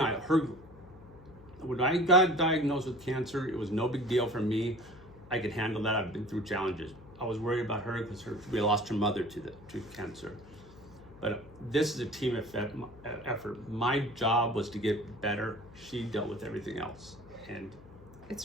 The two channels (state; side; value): noise; left; hum, 20 dB below the sound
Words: I, when I got diagnosed with cancer, it was no big deal for me. I could handle that. I've been through challenges. I was worried about her because we lost her mother to cancer. But this is a team effort. My job was to get better. She dealt with everything else. And it's